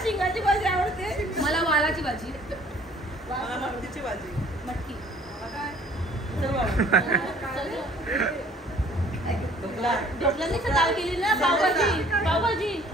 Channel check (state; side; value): normal; both; correlation 0.55